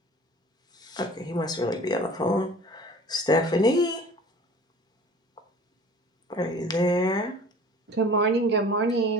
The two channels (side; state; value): both; normal; correlation 0.44